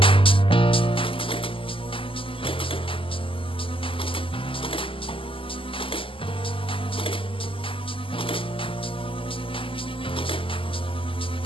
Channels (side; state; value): right; late; 0.25 ms